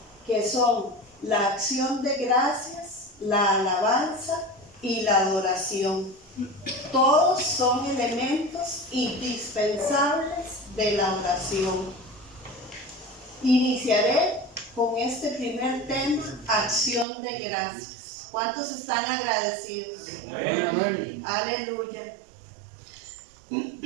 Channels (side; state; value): left; drops out; at 17.1 s